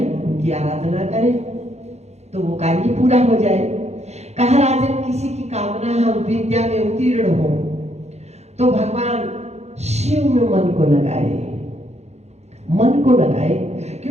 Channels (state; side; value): late; left; 0.32 ms